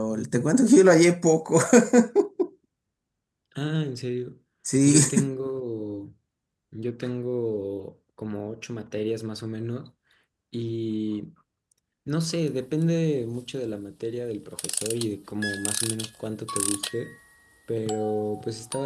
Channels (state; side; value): identical; both; correlation 1.00